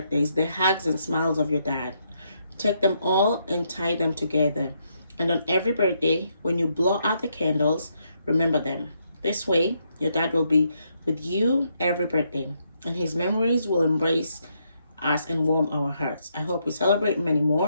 the hugs and smiles of your dad. Take them all and tie them together. And on every birthday, when you blow out the candles, remember them. This way, your dad will be with you every birthday, and his memories will embrace us and warm our hearts. I hope we celebrate many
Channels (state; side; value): inverted; both; correlation -0.77